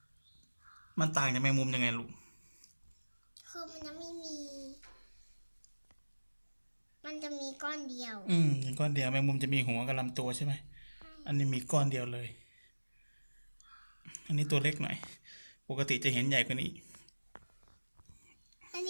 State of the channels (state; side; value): inverted; both; correlation -1.00